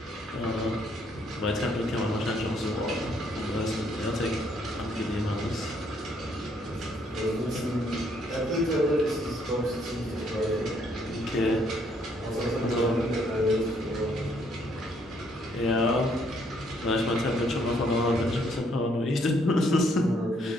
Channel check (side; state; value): both; normal; correlation 0.69